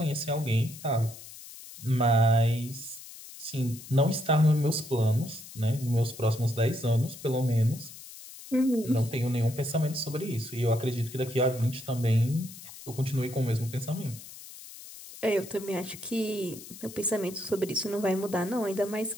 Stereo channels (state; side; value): noise; left; hiss, 16 dB below the sound